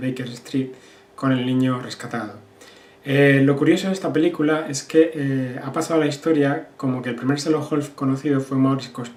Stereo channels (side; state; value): both; identical; correlation 1.00